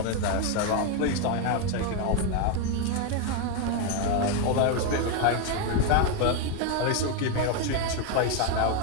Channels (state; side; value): different; both; correlation 0.01